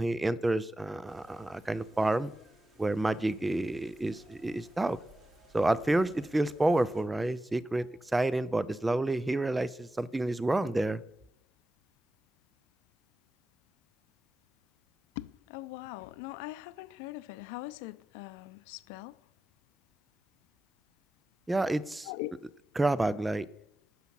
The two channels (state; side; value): normal; both; correlation 0.93